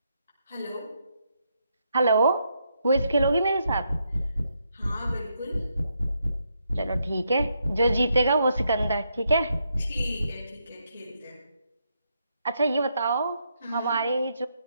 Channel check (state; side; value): inverted; both; correlation -0.79